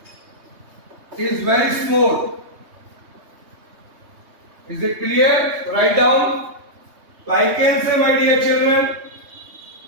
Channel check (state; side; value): late; left; 3.2 ms